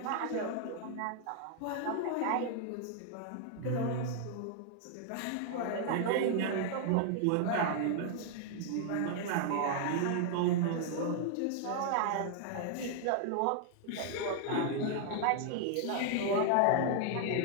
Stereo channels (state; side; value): different; both; correlation 0.00